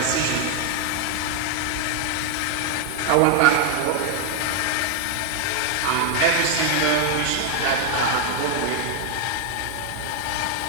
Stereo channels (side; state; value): both; different; correlation 0.00